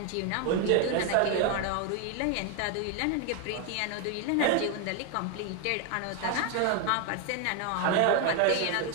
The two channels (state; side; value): different; both; correlation 0.01